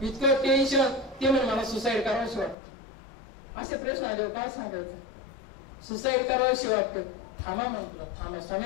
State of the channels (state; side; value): drops out; right; at 2.6 s